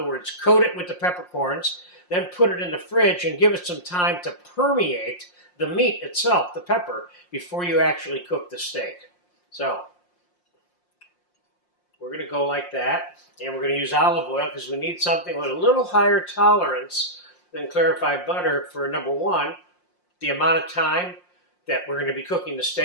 words, coat it with the peppercorns, then put it in the fridge and give it some time to permeate the meat itself, the pepper, before you actually cook the steak. So, we're going to go like that. And we're going to use olive oil because we need something with a little higher tolerance than clarified butter for, number one, the amount of time that we're going to be cooking the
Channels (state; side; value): late; right; 5.6 ms